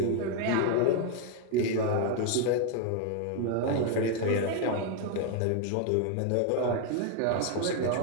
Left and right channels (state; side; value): different; both; correlation 0.00